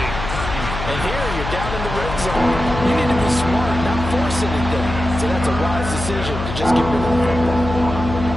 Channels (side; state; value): left; noise; hum, 7 dB below the sound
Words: And here you're down in the red zone. You need to be smart, not force anything. So that's a wise decision to just get rid of the football.